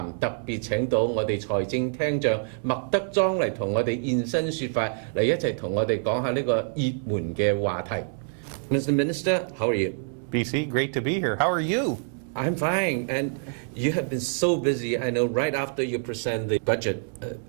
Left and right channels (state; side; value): silent; left; 61 dB below the other